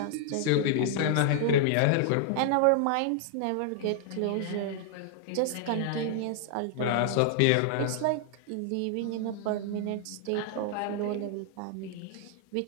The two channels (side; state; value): both; different; correlation -0.01